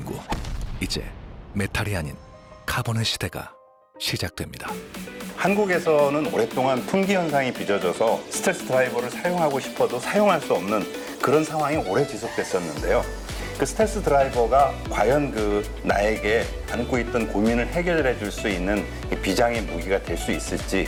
이제 메탈이 아닌 카본의 시대가 시작됩니다. 한국에서는 오랫동안 품귀 현상이 빚어져서 스텔스 드라이버를 사용하고 싶어도 사용할 수 없는 그런 상황이 오래 지속됐었는데요. 그 스텔스 드라이버가 과연 나에게 안고 있던 고민을 해결해 줄 수 있는 비장의 무기가 될 수 있을지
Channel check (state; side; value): identical; both; correlation 1.00